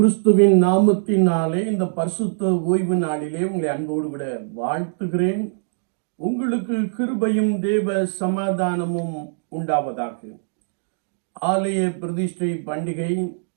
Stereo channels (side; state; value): left; silent; digital silence